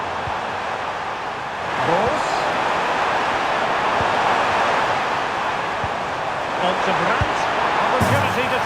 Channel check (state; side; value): identical; both; correlation 1.00